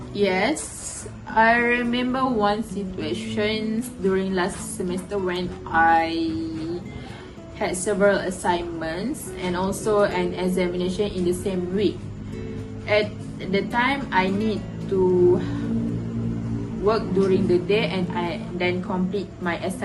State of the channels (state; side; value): identical; both; correlation 1.00